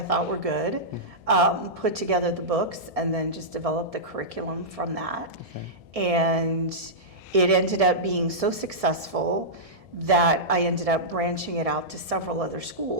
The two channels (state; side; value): late; left; 1.7 ms